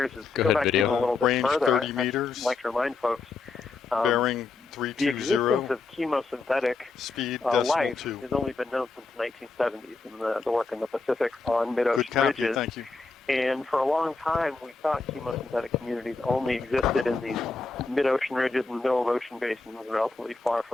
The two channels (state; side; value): quieter; right; 3.9 dB